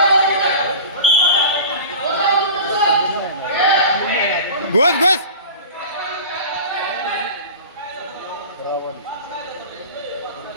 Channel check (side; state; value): both; inverted; correlation -0.36